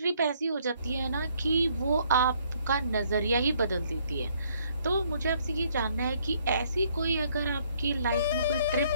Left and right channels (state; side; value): inverted; both; correlation -0.66